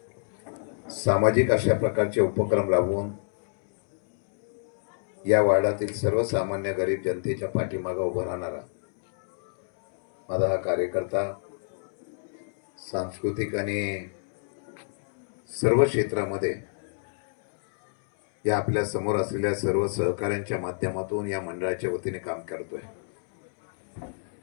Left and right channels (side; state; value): right; silent; 60 dB below the other